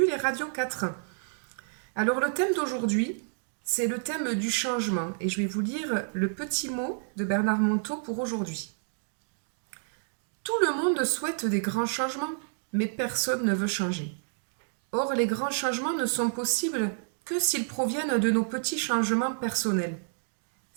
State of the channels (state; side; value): silent; left; digital silence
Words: et Radio 4. Alors le thème d'aujourd'hui, c'est le thème du changement et je vais vous lire le petit mot de Bernard Monteau pour aujourd'hui. Tout le monde souhaite des grands changements, mais personne ne veut changer. Or, les grands changements ne sont possibles que s'ils proviennent de nos petits changements personnels.